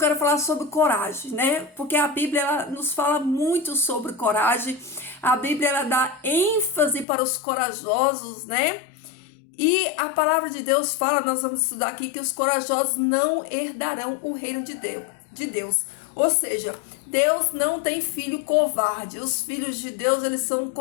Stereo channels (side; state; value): right; drops out; at 7.1 s